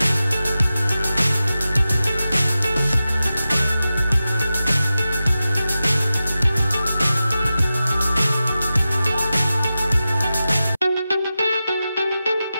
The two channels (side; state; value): both; inverted; correlation -0.93